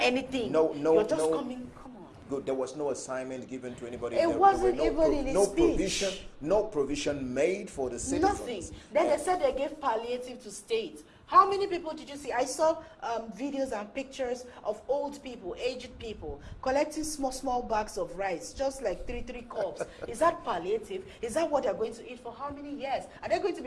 No. You're just coming. Come on. Good. There was no assignment given to anybody. It wasn't even in his speech. No provision made for the citizens. Nothing. Then they said they gave palliative to state. How many people did you see? I saw videos and pictures of old people, aged people, collecting small bags of rice, just like three cups. Is that palliative? Is that what they're going to eat for how many years? Are they going to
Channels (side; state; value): both; identical; correlation 1.00